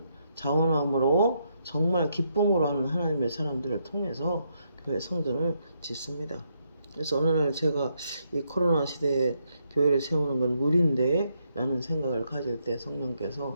자원함으로 정말 기쁨으로 하는 하나님의 사람들을 통해서 교회 성전을 짓습니다. 그래서 어느 날 제가 이 코로나 시대에 교회를 세우는 건 무리인데 라는 생각을 가질 때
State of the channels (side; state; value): both; inverted; correlation -0.77